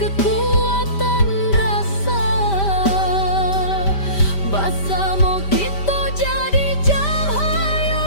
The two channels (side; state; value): right; late; 5.1 ms